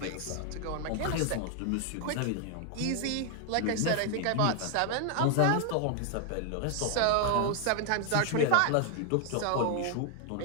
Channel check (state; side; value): different; both; correlation 0.00